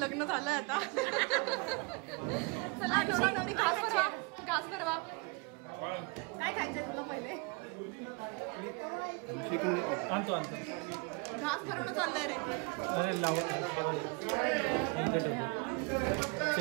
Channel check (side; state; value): left; quieter; 30.1 dB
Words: झालंय आता. चला नवरा नवरी घास भरवा. घास भरवा. काय खायचंय तुला पहिले? आणतो घास भरवणं चाललंय रे.